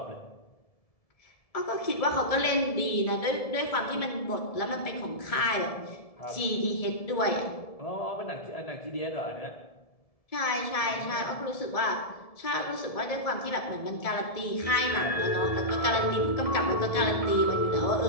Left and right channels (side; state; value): right; late; 1.7 ms